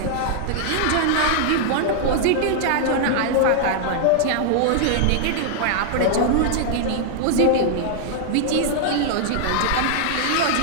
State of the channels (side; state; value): both; different; correlation -0.01